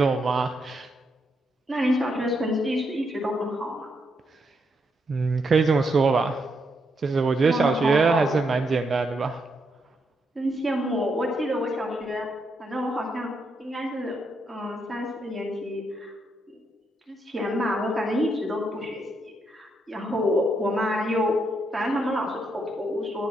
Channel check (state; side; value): normal; both; correlation 0.79